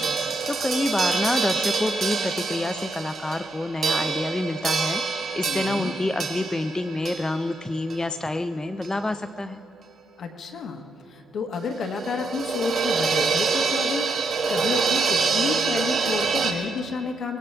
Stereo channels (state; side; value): normal; both; correlation 0.79